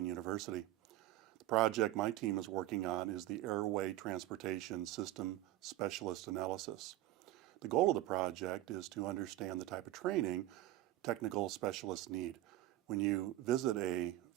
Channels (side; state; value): left; quieter; 15.3 dB